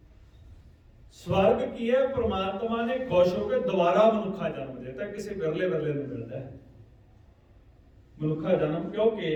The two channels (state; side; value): identical; both; correlation 1.00